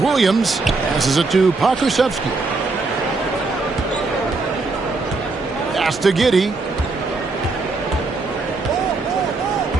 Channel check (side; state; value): left; quieter; 3.7 dB